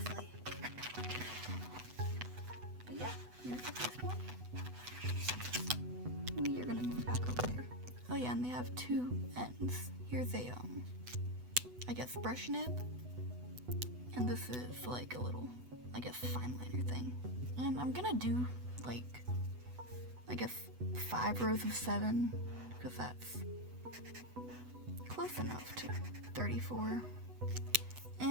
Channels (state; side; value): late; left; 8.1 ms